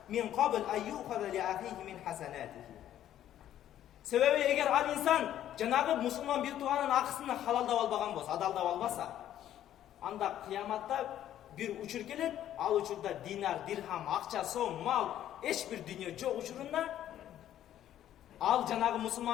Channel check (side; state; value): right; quieter; 11.6 dB